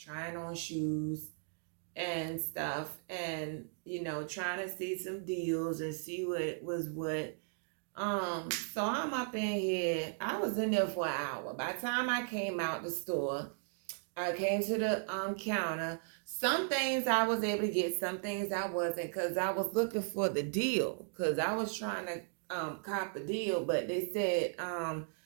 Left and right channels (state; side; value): silent; left; digital silence